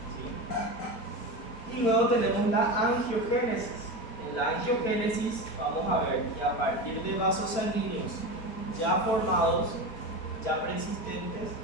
¿sí? Y luego tenemos la angiogénesis. En la angiogénesis vamos a ver que a partir de vasos sanguíneos ya formados, ya preexistentes,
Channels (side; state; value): right; late; 4.5 ms